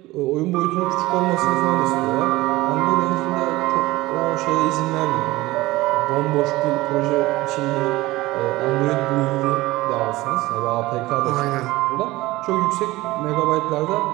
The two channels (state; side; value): quieter; left; 18.8 dB